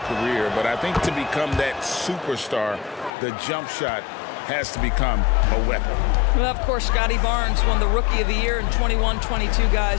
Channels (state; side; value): drops out; right; at 3.1 s